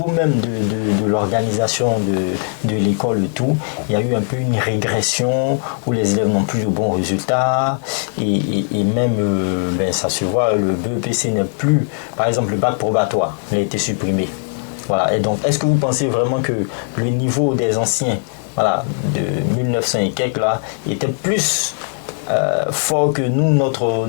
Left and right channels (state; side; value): silent; right; digital silence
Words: même de l'organisation de l'école et tout, il y a eu un peu une régression où les élèves n'ont plus de bons résultats et même ça se voit, le BEPC n'est plus, par exemple le bac probatoire, il a été supprimé. Voilà. Et donc est-ce que vous pensez vraiment que le niveau des anciens, voilà, de 1900 et quelques là, était plus fort que nous, notre